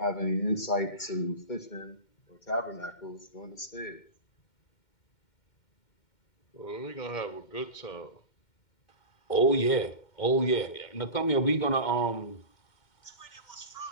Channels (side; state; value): right; late; 2.1 ms